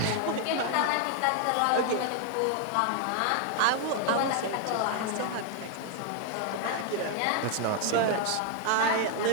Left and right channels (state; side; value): different; both; correlation 0.00